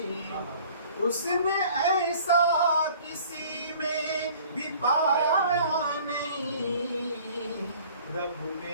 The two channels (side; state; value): both; inverted; correlation -0.51